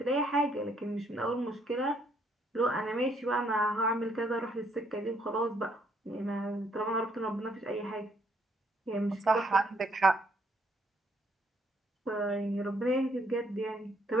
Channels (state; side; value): normal; both; correlation 0.69